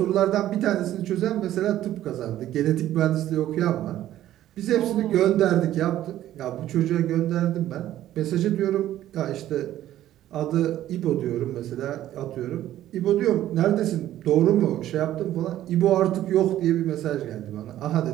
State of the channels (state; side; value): quieter; left; 13.0 dB